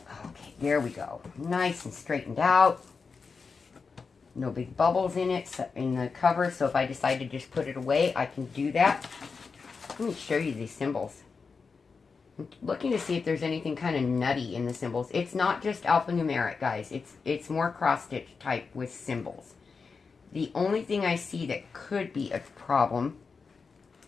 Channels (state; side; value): quieter; right; 5.0 dB